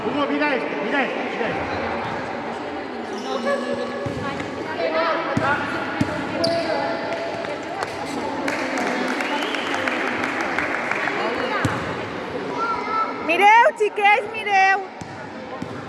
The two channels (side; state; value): both; identical; correlation 1.00